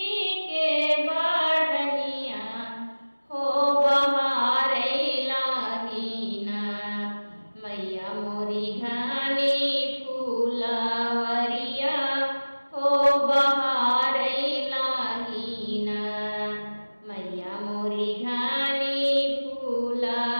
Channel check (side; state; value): both; inverted; correlation -1.00